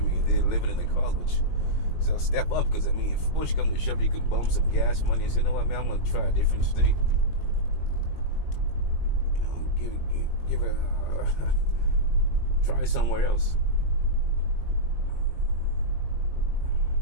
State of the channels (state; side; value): late; right; 19 ms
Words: I mean, they're living in the cars, which. So step up, because I mean, if push comes to shove, you can bump some gas money and say, you know what, man, I'm going to try a different state. Give it, try somewhere else.